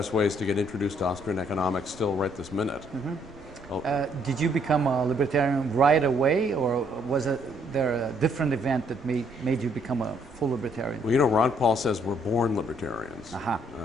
ways to get introduced to Austrian economics still right this minute. Mm-hmm. Did you become a libertarian right away, or was there a different event that made you become a full libertarian? Well, you know, Ron Paul says we're born libertarians,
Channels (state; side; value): noise; right; rumble, 25 dB below the sound